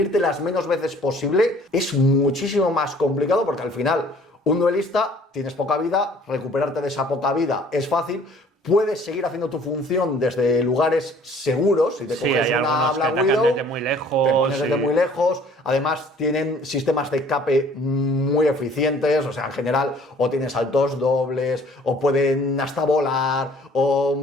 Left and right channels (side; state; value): both; normal; correlation 0.55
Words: las menos veces posible es muchísimo más complicado porque al final un duelista tienes poca vida, recuperarte de esa poca vida es fácil. Puedes seguir haciendo tu función desde lugares seguros. Si te coges una Black Widow, desde muy lejos, te pones desde muy lejos. Además, tienen sistemas de escape muy eficientes. O sea, en general, o tienes saltos dobles, o pueden hasta volar, o